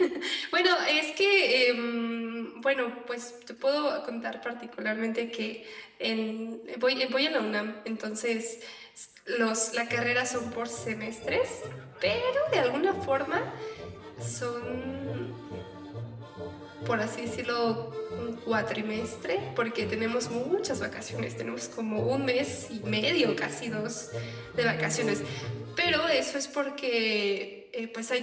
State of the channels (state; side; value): identical; both; correlation 1.00